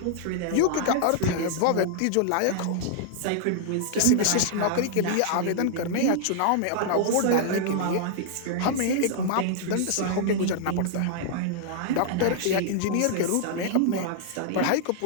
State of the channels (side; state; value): both; different; correlation -0.01